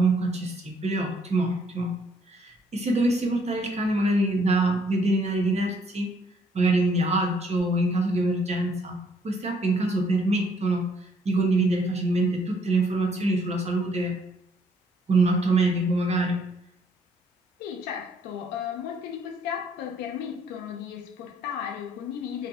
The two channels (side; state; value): both; normal; correlation 0.66